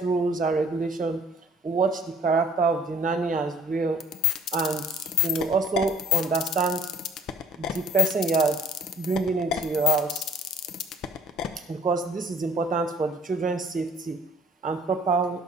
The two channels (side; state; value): both; normal; correlation 0.54